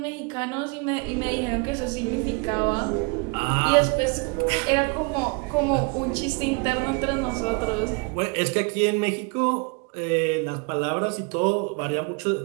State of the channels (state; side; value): quieter; left; 31.3 dB